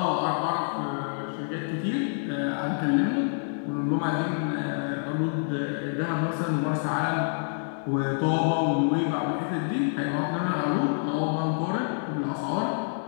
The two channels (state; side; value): silent; right; 60 dB below the other